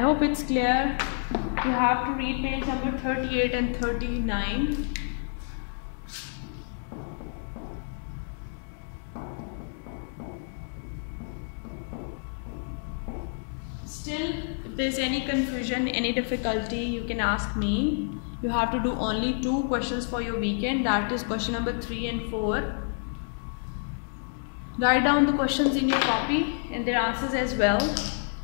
hope it's clear. You have to read page number 38 and 39. Still, if there's any confusion, any difficulty, you can ask me. You have to do only 2 questions for your weekend. That is question number 3 and 4. Write down the questions in your copy and their answers as well,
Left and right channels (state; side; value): silent; right; 59 dB below the other